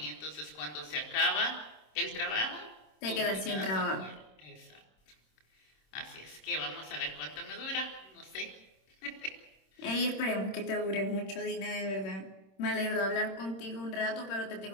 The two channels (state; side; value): late; right; 26 ms